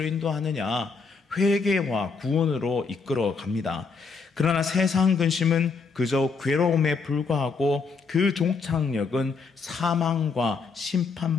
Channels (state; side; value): quieter; right; 4.8 dB